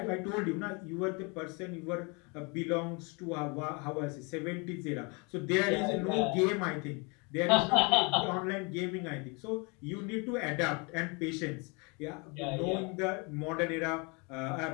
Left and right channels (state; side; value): quieter; right; 30.9 dB